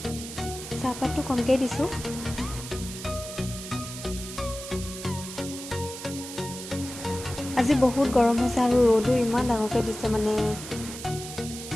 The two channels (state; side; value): noise; right; hiss, 10 dB below the sound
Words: চাহপাতটো কমকৈ দিছোঁ। আজি বহুত গৰম হৈছে আৰু ৰ'দো ইমান ডাঙৰকৈ দিছে মানে।